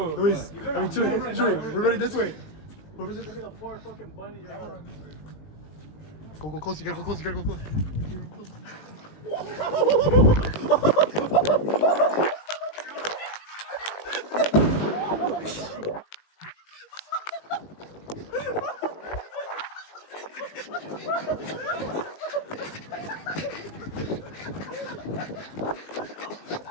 Luis, I mean, Chewy, we're ready this way. Look at the poor fucking bunny you're having. Go close, you gotta go close, you gotta go close.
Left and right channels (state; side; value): late; right; 19 ms